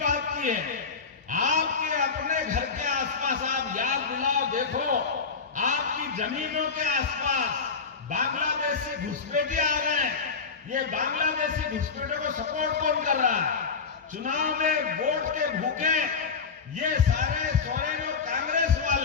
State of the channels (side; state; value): right; quieter; 5.2 dB